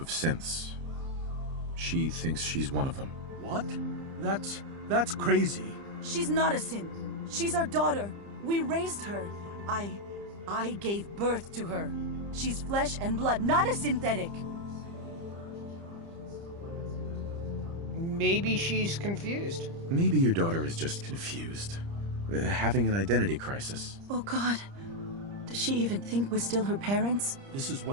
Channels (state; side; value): late; left; 30 ms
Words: synths. She thinks she's one of them. What? That's crazy. She's not a synth. She's our daughter. We raised her. I gave birth to her. She's flesh and blood, not a synthetic. Maybe she's confused. Maybe your daughter is just confused. Having an identity crisis. Oh God. Does she even think we're still her parents? This is